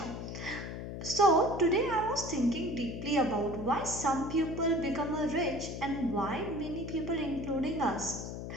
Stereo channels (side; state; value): left; noise; hum, 7 dB below the sound